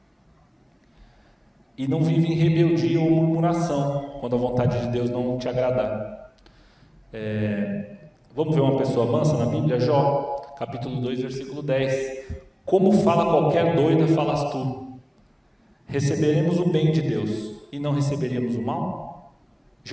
e não vive em rebeldia ou murmuração quando a vontade de Deus não te agradar. Vamos ver uma pessoa mansa na Bíblia? Jó, capítulo 2, versículo 10. Como fala qualquer doida, falas tu. Receberemos o bem de Deus e não receberíamos o mal?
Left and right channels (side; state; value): both; identical; correlation 1.00